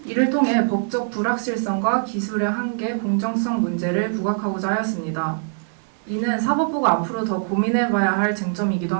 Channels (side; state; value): left; silent; digital silence